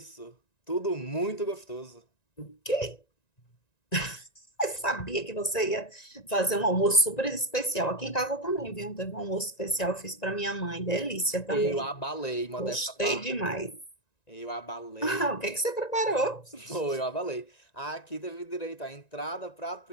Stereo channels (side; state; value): right; late; 1.9 ms